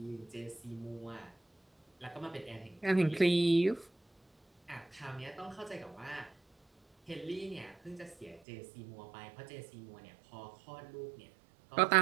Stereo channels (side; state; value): left; drops out; at 8.4 s